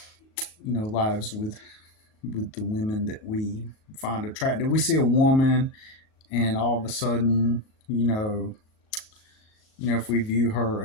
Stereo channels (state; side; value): late; right; 37 ms